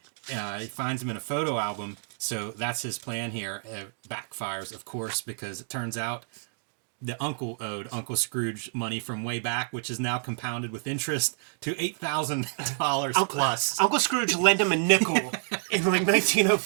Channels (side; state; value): left; silent; digital silence